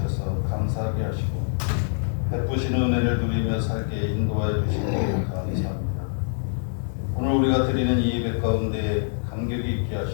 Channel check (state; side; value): silent; right; digital silence